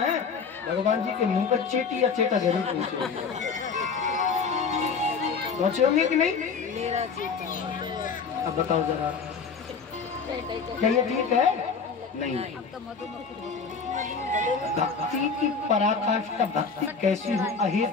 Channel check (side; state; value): right; quieter; 5.4 dB